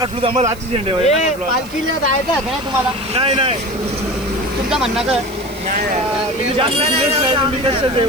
आम्हाला आजची झेंडे पालखीला जायचं आहे का तुम्हाला नाही नाही तुमचं म्हणणं काय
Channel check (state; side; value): noise; right; hiss, 21 dB below the sound